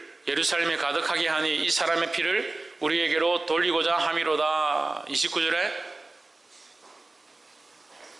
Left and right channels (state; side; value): quieter; left; 3.1 dB